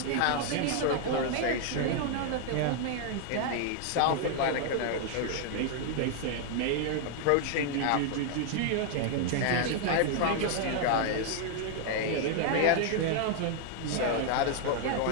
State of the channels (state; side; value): different; both; correlation 0.00